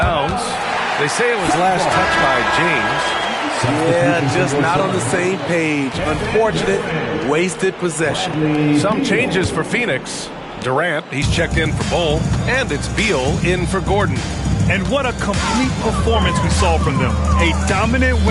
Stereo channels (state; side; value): identical; both; correlation 1.00